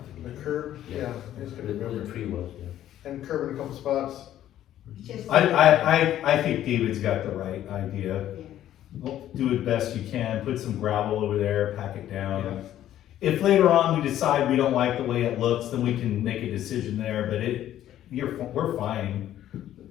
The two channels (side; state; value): right; quieter; 12.1 dB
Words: The curb, yeah, it's Where gonna the be tree was, yeah. and curb in a couple spots. Just- I think David's got the right idea. Do it best you can, put some gravel over there, pack it down. If later on we decide we don't like the way it looks, then we can make a decision there, but we're fine.